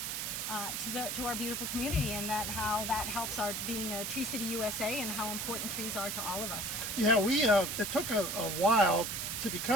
to our beautiful community, and that how that helps our being a Tree City USA and how important trees are to all of us. Yeah, it took a while to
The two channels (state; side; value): noise; right; hiss, 3 dB below the sound